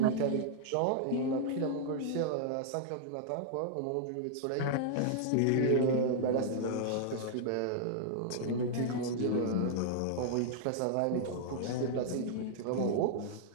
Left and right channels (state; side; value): different; both; correlation -0.01